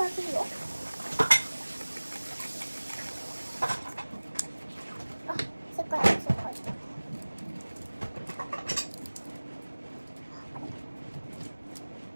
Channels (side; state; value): both; inverted; correlation -1.00